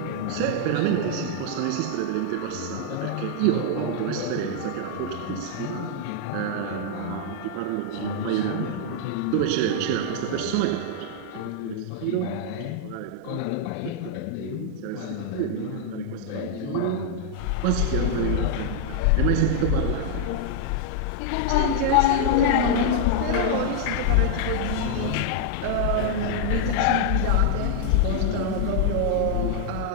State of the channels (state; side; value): different; both; correlation -0.01